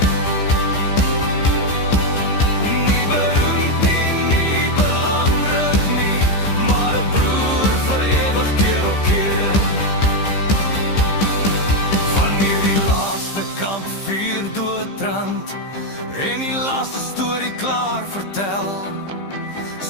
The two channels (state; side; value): late; right; 15 ms